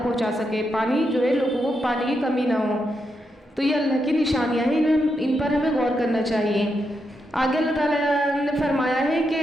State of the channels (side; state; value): both; normal; correlation 0.83